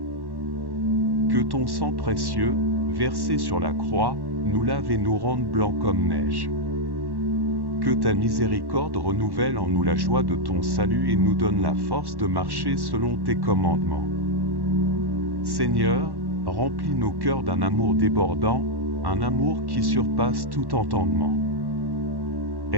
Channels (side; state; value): left; late; 1.1 ms